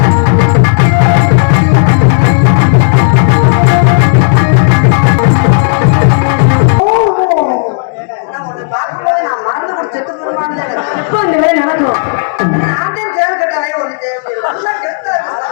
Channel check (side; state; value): right; silent; digital silence